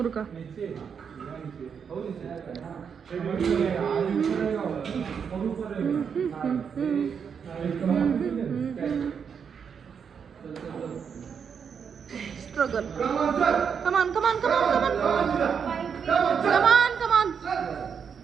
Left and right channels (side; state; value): left; quieter; 6.8 dB